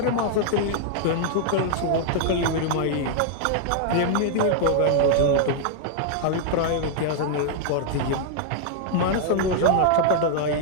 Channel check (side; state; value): both; different; correlation -0.01